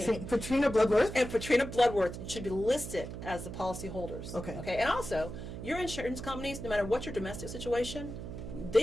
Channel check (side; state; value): right; noise; hum, 9 dB below the sound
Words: name? Patrina Bloodworth. And Patrina Bloodworth. It should be listed as the policy holders. Okay. Okay. And also, your insurance companies, no matter what your domestic situation,